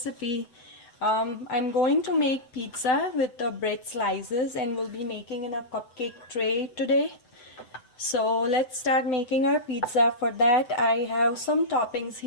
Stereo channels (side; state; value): right; late; 7.9 ms